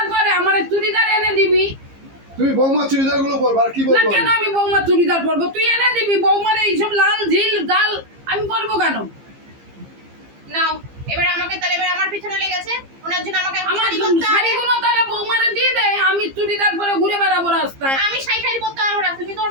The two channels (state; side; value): late; left; 15 ms